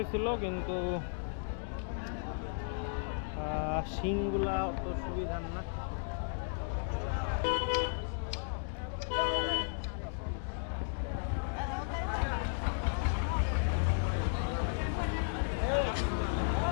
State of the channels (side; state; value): right; silent; digital silence